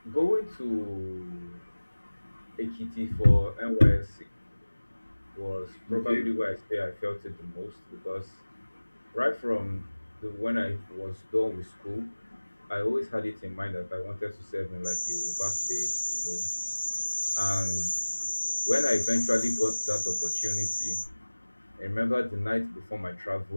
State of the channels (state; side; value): inverted; both; correlation -1.00